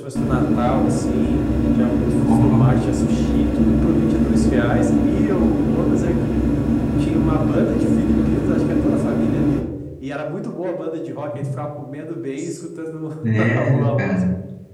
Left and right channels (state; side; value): identical; both; correlation 1.00